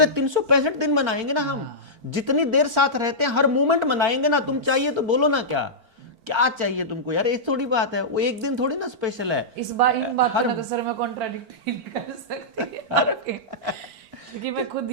365 दिन मनाएंगे ना हम। जितनी देर साथ रहते हैं हर मोमेंट मनाएंगे ना। तुम चाहिए तो बोलो ना, क्या क्या चाहिए तुमको यार, ये थोड़ी बात है, वो एक दिन थोड़ी ना स्पेशल है। इस बार इन बातों में तो सर मैं कॉन्ट्राडिक्ट नहीं कर सकती क्योंकि मैं खुद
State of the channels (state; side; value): late; left; 4.4 ms